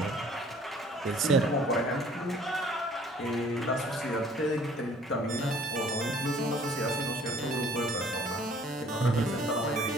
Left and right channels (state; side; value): normal; both; correlation 0.55